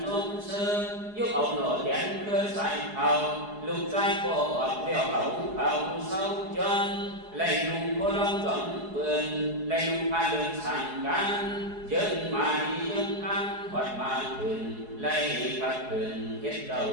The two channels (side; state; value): left; late; 4.8 ms